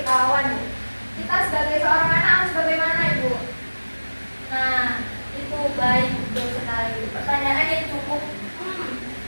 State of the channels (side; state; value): both; inverted; correlation -1.00